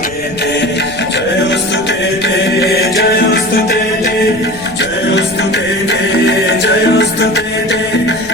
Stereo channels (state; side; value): noise; left; rumble, 18 dB below the sound